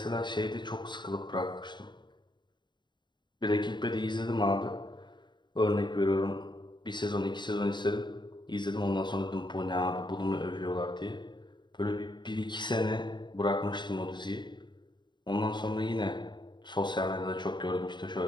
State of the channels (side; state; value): right; late; 0.22 ms